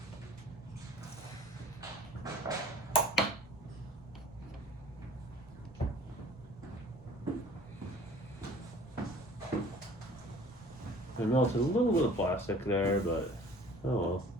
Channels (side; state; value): both; normal; correlation 0.49